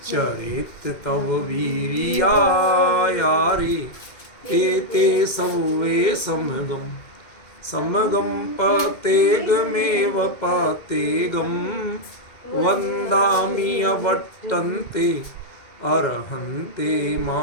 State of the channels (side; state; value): right; late; 2.1 ms